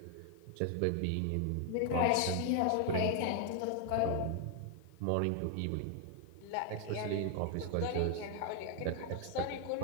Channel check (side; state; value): both; different; correlation 0.00